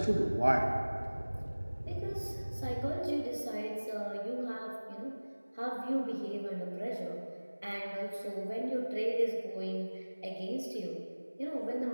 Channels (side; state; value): both; inverted; correlation -1.00